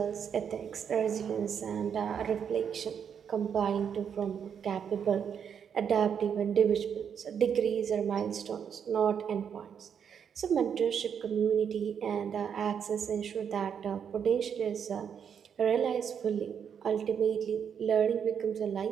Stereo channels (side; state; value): left; quieter; 7.7 dB